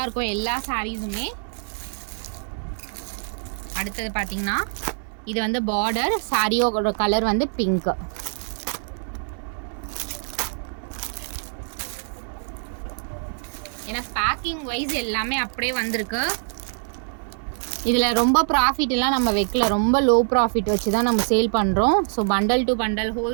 இருக்கும் எல்லா சாரீஸுமே. அடுத்தது பார்த்திங்கன்னா இது வந்து பார்டர். சாரியோட கலர் வந்து பிங்க்கு. ஏன்னா பேக்கிங் வைஸ் எல்லாமே அப்படியே வந்திருக்கு. இதில் ரொம்ப ப்ராஃபிட்லாம் நம்ம வைக்கல. ரொம்ப லோ ப்ராஃபிட் வச்சு தான் நம்ம சேல் பண்ணுறோம். ஸோ பண்டல் டு பண்டல்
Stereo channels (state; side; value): silent; left; 62 dB below the other